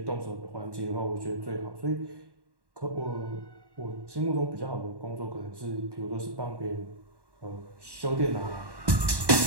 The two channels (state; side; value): late; left; 1.1 ms